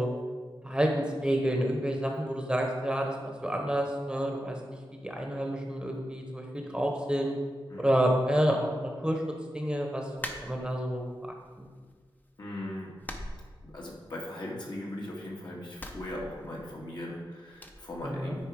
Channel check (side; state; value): both; normal; correlation 0.89